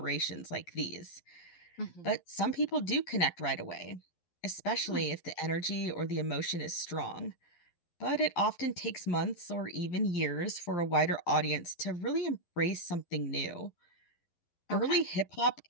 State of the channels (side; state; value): right; late; 11 ms